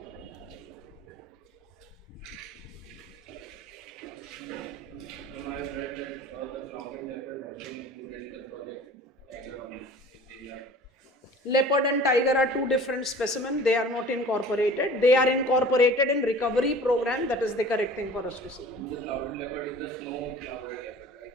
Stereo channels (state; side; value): normal; both; correlation 0.44